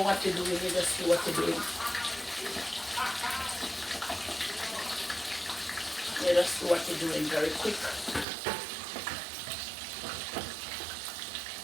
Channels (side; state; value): left; drops out; at 8.2 s